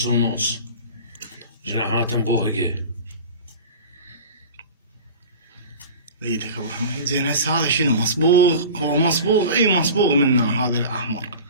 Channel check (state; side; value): inverted; both; correlation -0.36